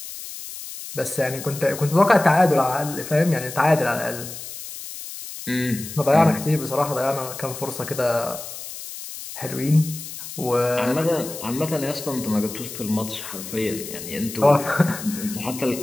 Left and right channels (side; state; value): left; noise; hiss, 11 dB below the sound